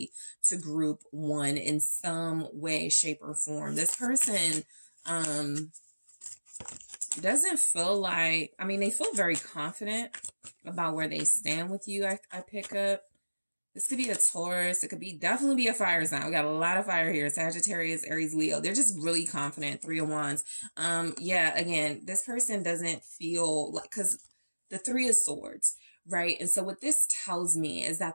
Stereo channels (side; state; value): both; inverted; correlation -1.00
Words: to group one in some way, shape, or form. This person doesn't feel like, I mean, they feel very confident about where they stand with you. I pick up. This could be a Taurus. It could be definitely be a fire sign. We got a lot of fire here. Sagittarius, Aries, Leo. They're just really confident. Three of Wands. Yeah, again, this person doesn't feel like, because the Three of Swords, right? And so what this tells me is